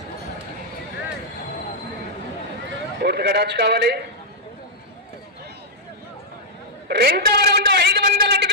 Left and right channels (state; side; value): normal; both; correlation -0.07